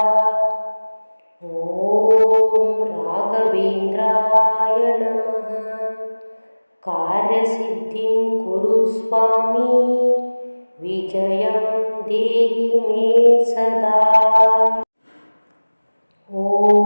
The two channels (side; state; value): both; inverted; correlation -1.00